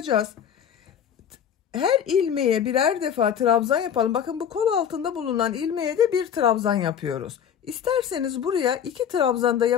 Her ilmeğe birer defa trabzan yapalım. Bakın bu kol altında bulunan ilmeğe de bir trabzan yapıyoruz. İsterseniz buraya 2 trabzan da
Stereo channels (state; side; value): quieter; right; 8.5 dB